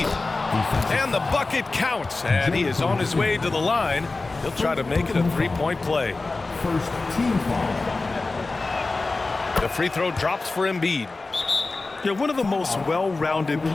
And the bucket counts. And he is on his way to the line. He'll try to make it a three-point play. First team foul. The free throw drops for Embiid. Yeah, one of the most well-rounded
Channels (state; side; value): quieter; right; 3.5 dB